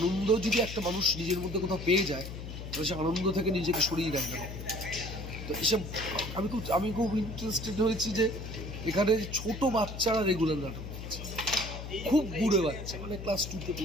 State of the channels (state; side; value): noise; left; hum, 9 dB below the sound